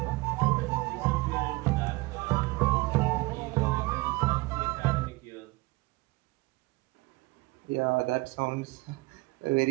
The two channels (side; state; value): left; quieter; 22.5 dB